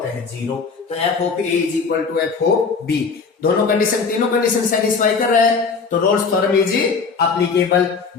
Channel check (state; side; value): quieter; right; 5.0 dB